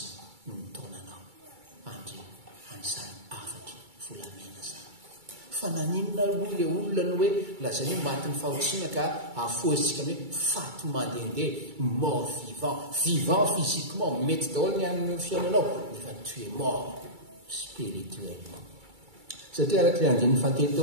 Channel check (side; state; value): left; late; 2.3 ms